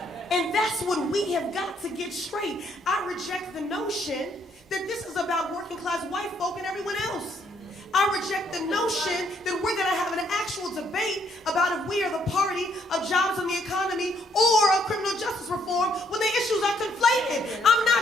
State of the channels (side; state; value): both; normal; correlation 0.70